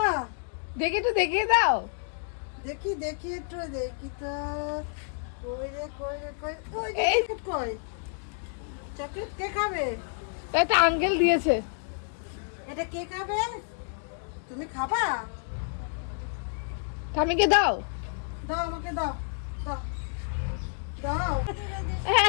দেখি একটু দেখিয়ে দাও। দেখি দেখি একটু দেখি তো, কই রে কই রে কই, ওই যে এই। চকলেট কই, চকলেট কে খাবে? একটা আঙ্কেল দিয়েছে। এটা কে খাবে? তুমি খাবা? ঠাম্মিকে দাও। দাও আমাকে দাও, দাও দাও।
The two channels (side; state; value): right; silent; 58 dB below the other